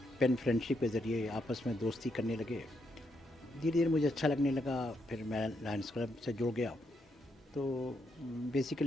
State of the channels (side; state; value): both; normal; correlation 0.79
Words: फ्रेंडशिप के ज़रिए आपस में दोस्ती करने लगे। धीरे धीरे मुझे अच्छा लगने लगा, फिर मैं लायंस क्लब से जुड़ गया। तो